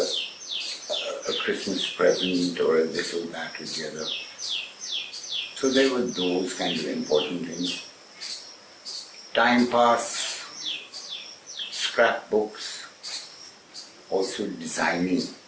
Christmas present or a this or that or the other. So there were those kind of important things. Time pass, scrapbooks, also designing.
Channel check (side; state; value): both; identical; correlation 1.00